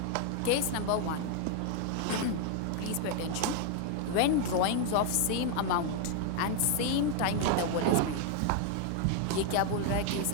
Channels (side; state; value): both; different; correlation 0.00